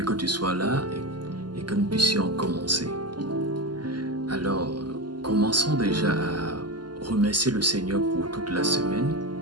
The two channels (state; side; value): late; left; 0.71 ms